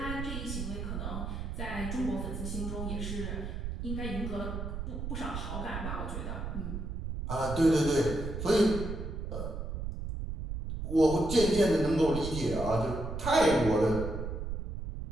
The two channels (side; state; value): right; noise; rumble, 5 dB below the sound